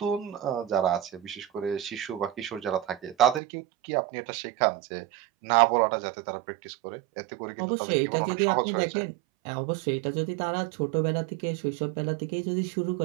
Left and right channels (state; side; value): drops out; left; at 3.4 s